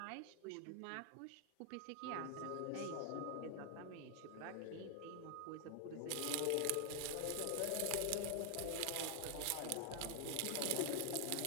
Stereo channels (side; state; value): both; different; correlation 0.00